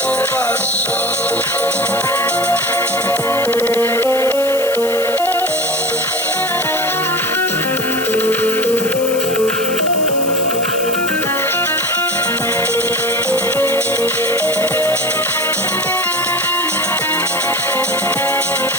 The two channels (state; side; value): noise; left; hiss, 11 dB below the sound